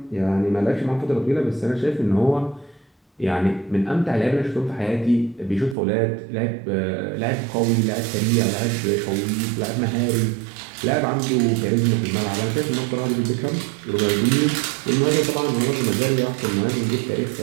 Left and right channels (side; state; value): left; drops out; at 5.8 s